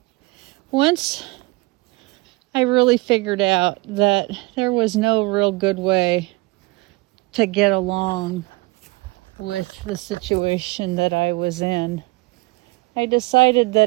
once I really figured out that there was no real good way to get along with the situation that I was in, I decided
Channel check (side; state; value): left; quieter; 24.1 dB